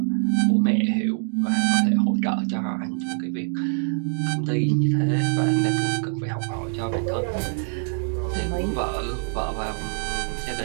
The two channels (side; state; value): left; silent; 61 dB below the other